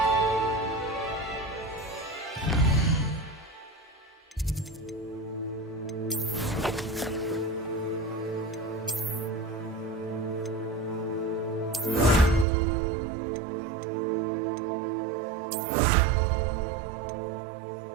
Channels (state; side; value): drops out; left; at 12.5 s